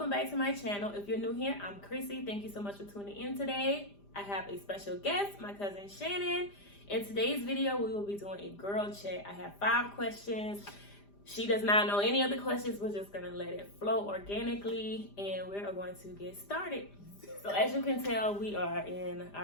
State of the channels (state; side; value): late; right; 5.0 ms